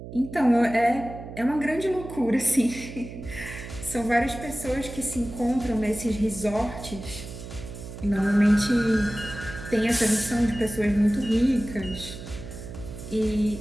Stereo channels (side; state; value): right; noise; hum, 12 dB below the sound